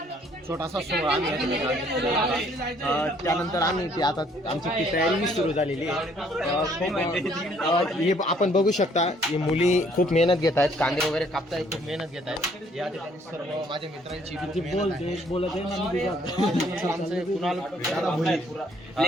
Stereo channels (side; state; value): both; normal; correlation 0.63